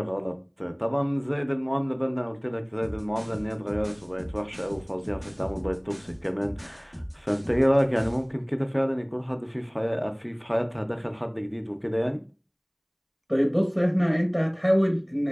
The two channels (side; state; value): both; identical; correlation 1.00